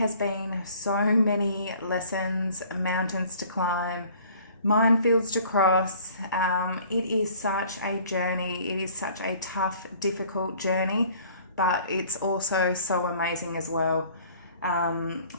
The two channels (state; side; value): inverted; both; correlation -0.53